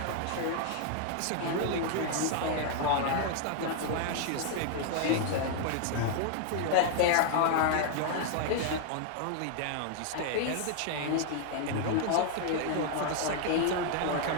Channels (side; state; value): both; different; correlation 0.00